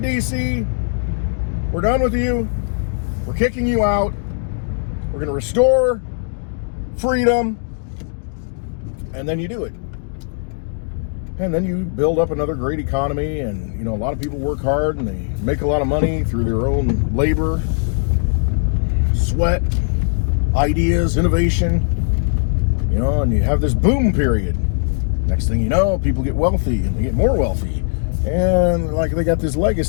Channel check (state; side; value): silent; right; digital silence